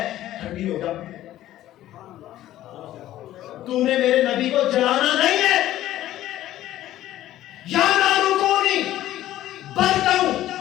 ٹھنڈی ہو جا. تو نے میرے نبی کو جلانا نہیں ہے. یا نار کونی برداً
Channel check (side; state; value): right; quieter; 13.8 dB